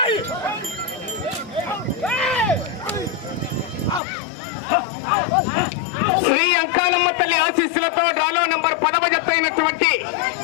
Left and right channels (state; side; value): drops out; right; at 4.0 s